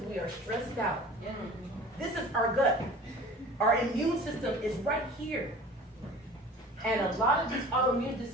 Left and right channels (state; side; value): normal; both; correlation 0.43